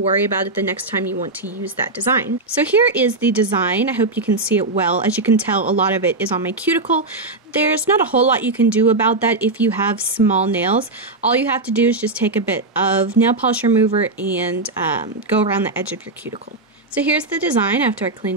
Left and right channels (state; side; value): quieter; left; 3.2 dB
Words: about it the next time you want to use that design. So here is the design. I hope you can see it well. As you can tell, a lot of it is on my cuticle. There's not a whole lot you can do about that if you have small nails. All you have to do is just take a bit of nail polish remover and go around the edge of your cuticle. So here's the design after I